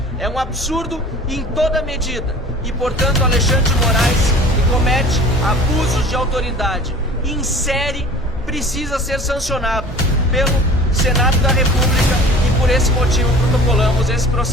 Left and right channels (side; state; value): both; normal; correlation 0.44